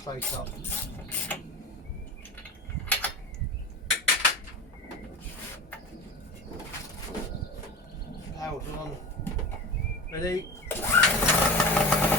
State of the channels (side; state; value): both; normal; correlation 0.30